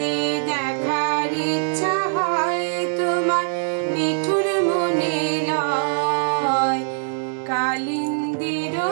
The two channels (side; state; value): left; silent; digital silence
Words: দেখার ইচ্ছা হয় তোমার নিঠুর মনে লয়, কালিন্দির